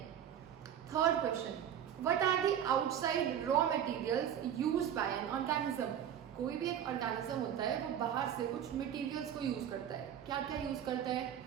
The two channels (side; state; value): left; quieter; 9.6 dB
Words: Third question, what are the outside raw materials used by an organism? कोई भी एक ऑर्गेनिज्म होता है वो बाहर से कुछ मटेरियल्स को यूज करता है। क्या क्या यूज करता है?